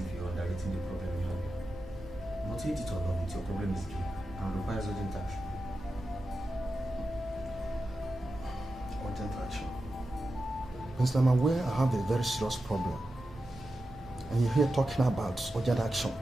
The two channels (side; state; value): both; normal; correlation 0.91